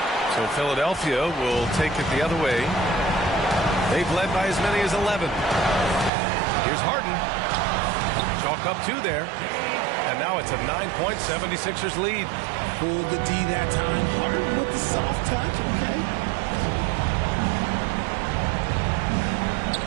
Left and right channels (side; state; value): left; drops out; at 6.1 s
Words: So Philadelphia will take it the other way. They've led by as many as 11. Here's Harden. Chalk up 2 there. And now it's a 9-point 76ers lead. Pulled the D that time. Harden with the soft touch, okay.